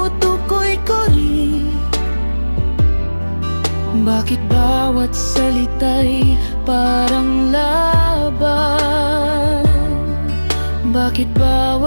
ko rin? Bakit bawat salita'y parang laban? Bakit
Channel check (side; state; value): both; inverted; correlation -1.00